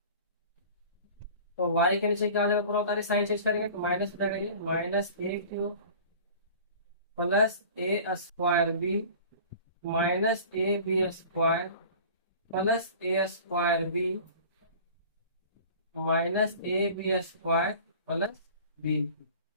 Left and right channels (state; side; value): inverted; both; correlation -0.43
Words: तो y के नीचे क्या आ जाएगा, पूरा उतारे साइन चेंज करेंगे तो माइनस हो जाएगा, ये minus A cube plus A square b minus A B square plus A square b minus A B square plus b.